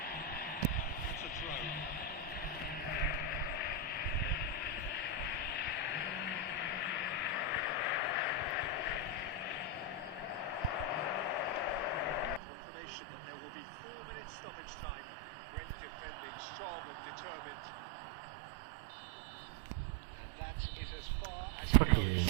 That's a indication that there will be 4 minutes stoppage time. Great defending, strong and determined. And that is as far as it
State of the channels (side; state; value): left; drops out; at 12.4 s